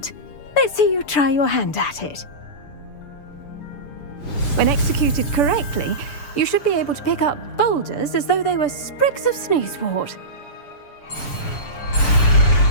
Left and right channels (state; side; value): late; right; 6.8 ms